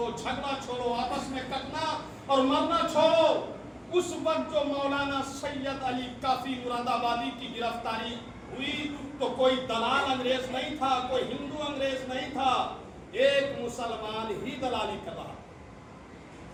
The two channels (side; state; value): both; identical; correlation 1.00